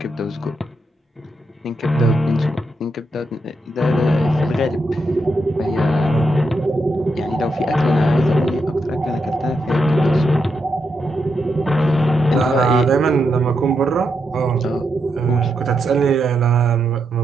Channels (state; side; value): normal; both; correlation 0.83